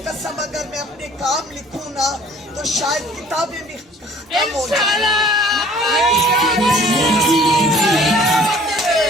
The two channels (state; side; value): normal; both; correlation 0.53